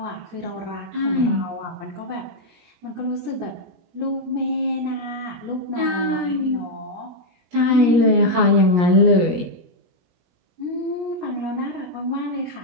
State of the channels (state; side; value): late; left; 17 ms